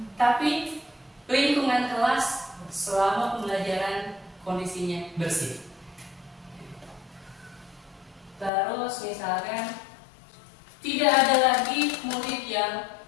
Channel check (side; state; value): right; drops out; at 8.5 s